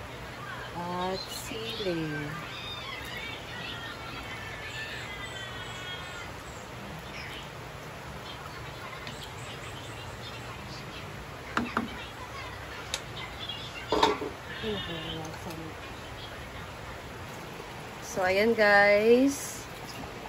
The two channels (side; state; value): both; identical; correlation 1.00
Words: At sili. So, ayan guys.